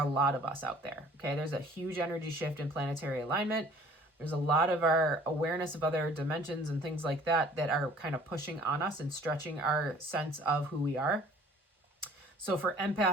lot of us out there, okay? There's a huge energy shift in planetary alignment. There's a lot of our awareness of other dimensions and things like that that are kind of pushing on us and stretching our sense of who we are. So for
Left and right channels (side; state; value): both; normal; correlation 0.53